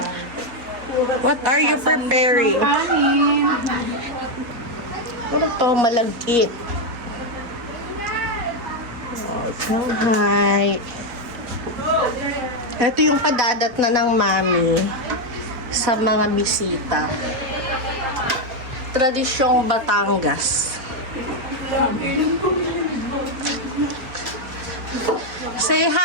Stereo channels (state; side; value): late; left; 4.1 ms